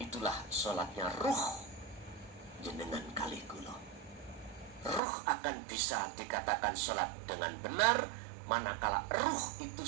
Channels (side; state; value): left; drops out; at 5.0 s